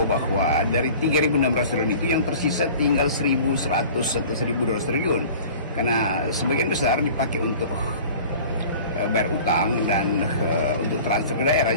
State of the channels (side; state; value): both; inverted; correlation -0.43